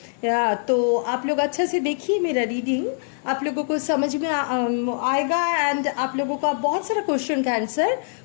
तो आप लोग अच्छे से देखिए मेरा रीडिंग, आप लोगों को समझ में आएगा एंड आप लोगों का बहुत सारा क्वेश्चन का आंसर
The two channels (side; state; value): right; silent; digital silence